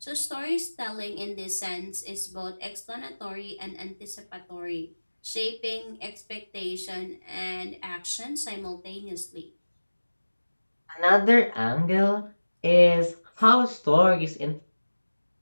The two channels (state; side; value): inverted; both; correlation -1.00